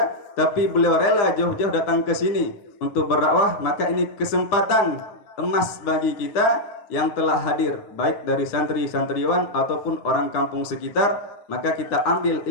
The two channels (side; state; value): right; late; 9.8 ms